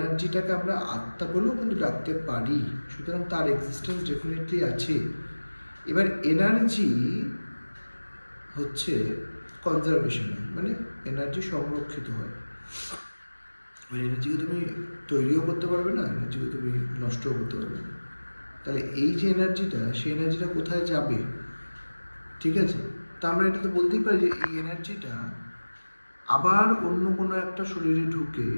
আমরা আত্মা বলেও কিন্তু ডাকতে পারি। সুতরাং তার এক্সিস্টেন্স ডেফিনেটলি আছে। এবার এনার্জি হচ্ছে কনজারভেশন, মানে এনার্জি সংরক্ষিত হয়। ওই এনার্জিকে তুমি তৈরিও করতে পারবে না, এনার্জিকে তুমি নষ্টও করতে পারবে না। তাহলে এই যে এনার্জিটা, সেই এনার্জিটা কোথায় যাবে, ঠিক আছে। তা আমরা এটা তো বলতেই পারি যে এই এনার্জিটা আবার অন্য কোনো একটা শরীরে ঢুকে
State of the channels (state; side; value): inverted; both; correlation -1.00